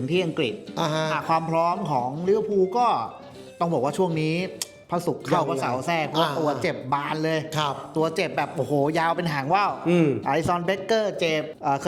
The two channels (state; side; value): identical; both; correlation 1.00